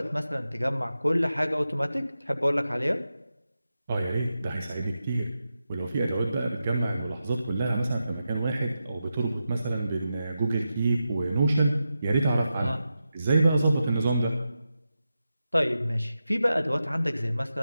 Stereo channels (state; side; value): inverted; both; correlation -0.90